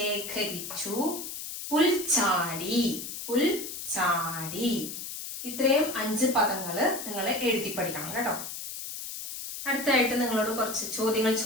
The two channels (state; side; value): noise; left; hiss, 8 dB below the sound